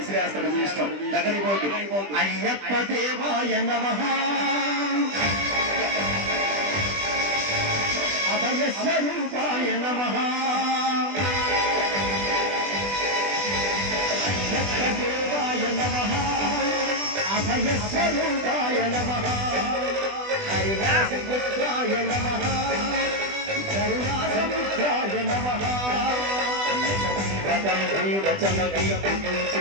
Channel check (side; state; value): left; late; 20 ms